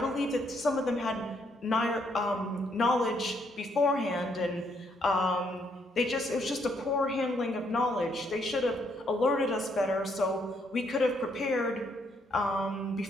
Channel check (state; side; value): normal; both; correlation 0.72